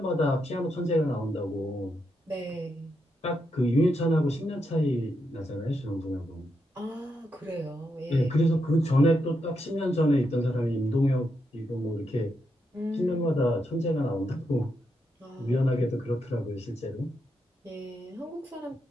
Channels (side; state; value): both; normal; correlation 0.82